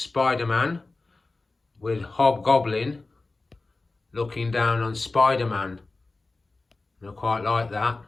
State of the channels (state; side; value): quieter; right; 3.4 dB